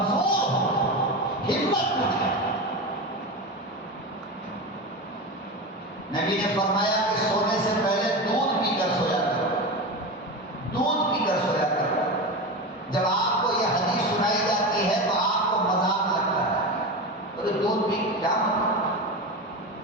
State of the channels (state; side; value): normal; both; correlation 0.22